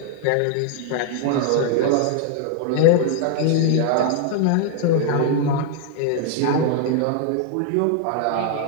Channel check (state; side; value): different; both; correlation 0.00